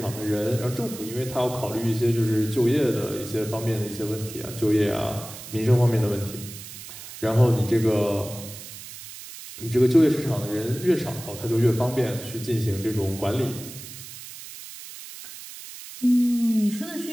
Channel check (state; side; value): noise; right; hiss, 13 dB below the sound